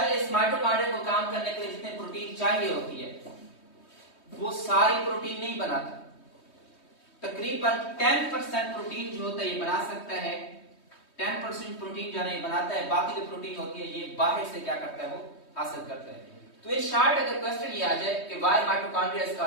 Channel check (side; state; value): right; late; 3.2 ms